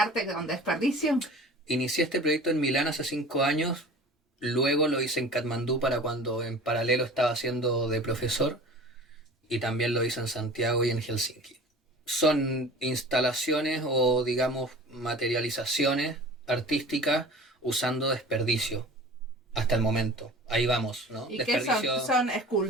con desperdicio. Inicié este proyecto en Milán hace 5 años. Luego lo hice en Katmandú para cuando en paralelo estaba haciendo de profesor y también lo hice en Santiago y en Helsinki. Son instalaciones o digamos materializaciones artísticas usando desperdicio hasta el momento. Ahí vamos, ¿no? ¿Y desperdicio... qué son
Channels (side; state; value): both; normal; correlation 0.41